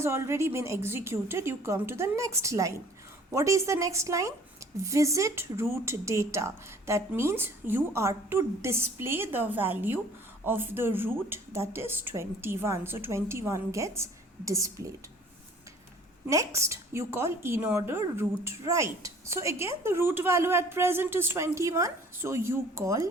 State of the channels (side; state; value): both; normal; correlation 0.52